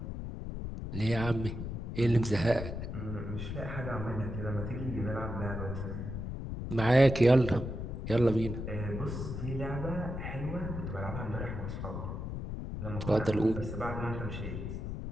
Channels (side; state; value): left; noise; rumble, 5 dB below the sound